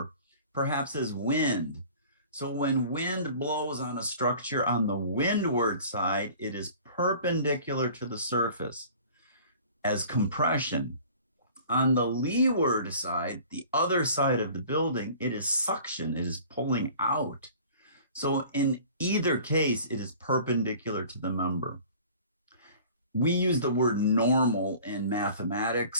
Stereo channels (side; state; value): both; inverted; correlation -0.47